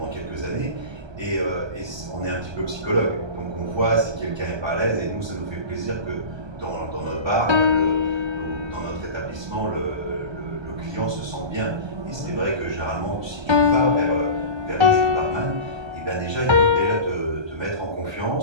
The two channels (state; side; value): late; left; 1.3 ms